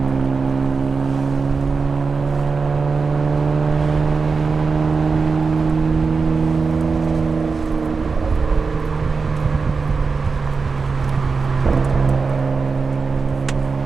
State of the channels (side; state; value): left; quieter; 4.7 dB